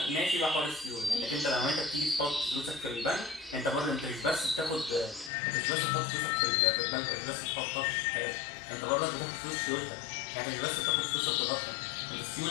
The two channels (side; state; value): right; drops out; at 5.3 s